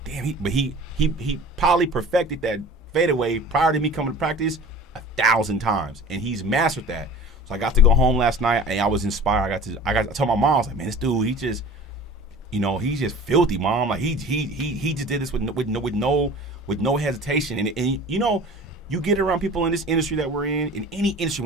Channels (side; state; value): both; normal; correlation 0.41